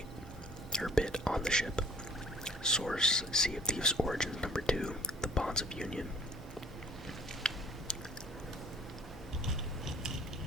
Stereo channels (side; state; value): both; normal; correlation 0.52